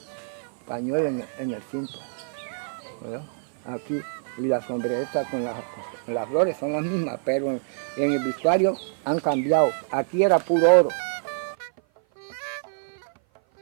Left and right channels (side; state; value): left; silent; 55 dB below the other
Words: pañuelos en el cinto. ¿Verdad? Aquí, y las sombreretas con las flores son las mismas, pero en el vestuario han cambiado. Aquí era puro oro.